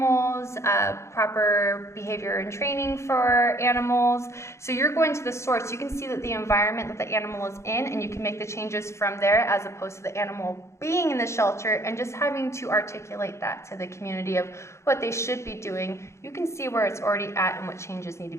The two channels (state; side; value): late; right; 0.14 ms